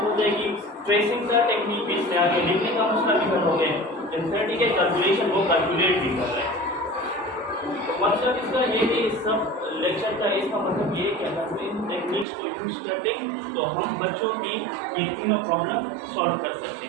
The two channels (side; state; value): left; drops out; at 12.2 s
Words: जाएगी, ट्रेसिंग का टेक्निक भी इसमें आगे लिखने का मसला भी हल हो गया, इंसर्टी के कैलकुलेशन वो कैलकुलेट भी कर रहे हैं। तो मतलब इसका ये कि इस सब लेक्चर का इसका मतलब ये कि अगर इन टेक्निक्स को यूज़ करते तो हम बच्चों की ये तीनों प्रॉब्लम सॉल्व कर सकते